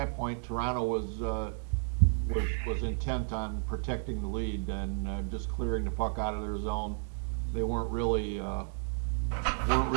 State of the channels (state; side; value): silent; left; 56 dB below the other